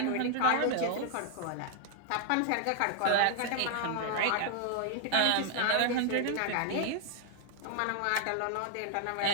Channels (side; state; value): both; different; correlation 0.00